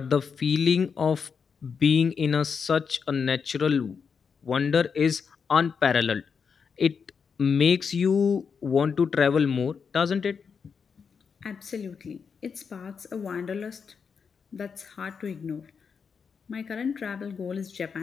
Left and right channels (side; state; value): right; quieter; 6.1 dB